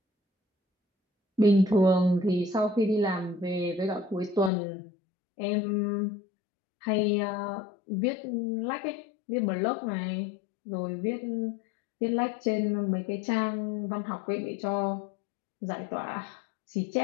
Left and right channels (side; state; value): right; drops out; at 4.5 s